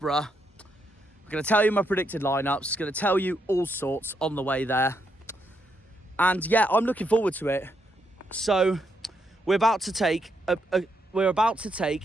I'm going to tell you my predicted lineups, going to tell you all sorts on the way there. And yeah, I'm looking forward to it. So we're about to take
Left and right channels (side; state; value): both; normal; correlation 0.78